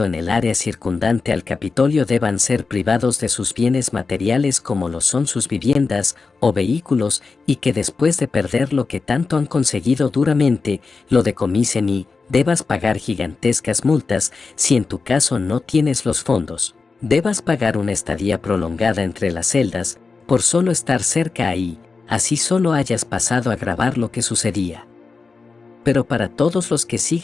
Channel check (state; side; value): quieter; right; 4.4 dB